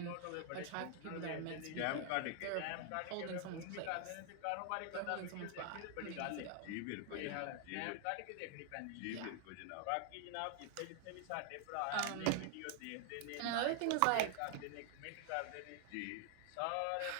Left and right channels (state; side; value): different; both; correlation 0.00